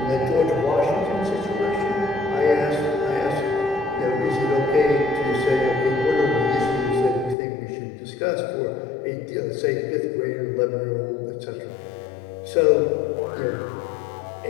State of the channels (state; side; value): drops out; right; at 7.4 s